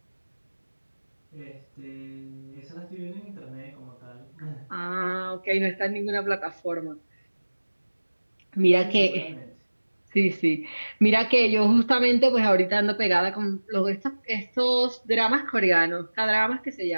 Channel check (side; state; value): both; inverted; correlation -1.00